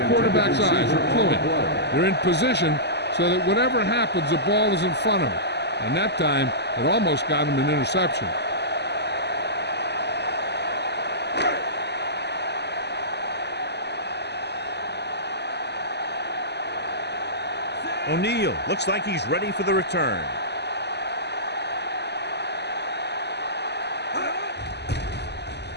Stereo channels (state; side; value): late; right; 0.49 ms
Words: quarterback's eyes. They're cluing. They're in position so that whatever happens, the ball is in front of him. And that time, it almost got him an interception. O'Neal looks like he's ready for the return.